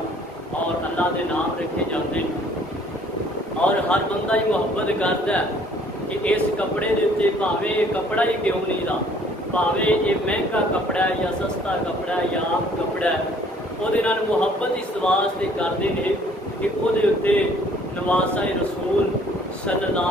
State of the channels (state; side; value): normal; both; correlation 0.58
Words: اور اللہ دے نام رکھے جاتے ہیں۔ اور ہر بندہ ہی محبت کرتا ہے کہ اس کپڑے دے اتنے بھاویں یہ کپڑا ہی کیوں نہیں رہا، بھاویں یہ مہنگا کپڑا ہے یا سستا کپڑا ہے یا عام کپڑا ہے، وہ محبت اس واسطے کرتے ہیں کہ وہ نواسا رسول صلی